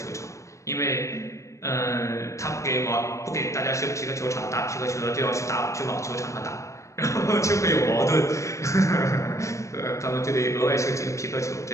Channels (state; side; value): late; right; 0.15 ms